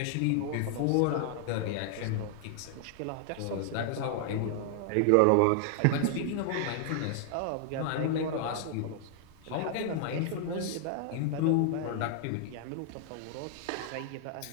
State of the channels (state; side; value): different; both; correlation 0.00